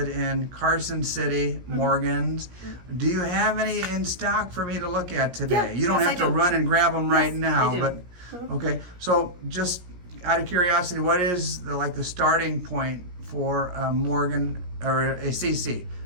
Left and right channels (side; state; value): left; late; 17 ms